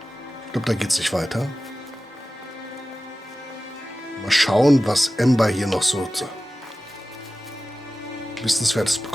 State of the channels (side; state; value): both; normal; correlation 0.95